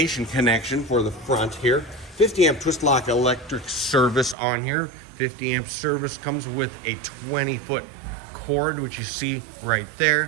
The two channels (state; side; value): drops out; left; at 4.4 s